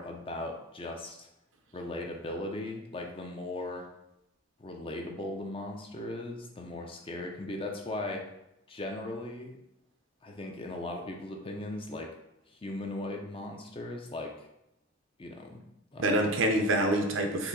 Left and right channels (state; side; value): normal; both; correlation 0.31